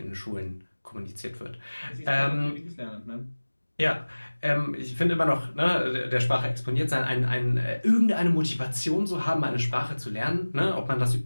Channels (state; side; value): inverted; both; correlation -1.00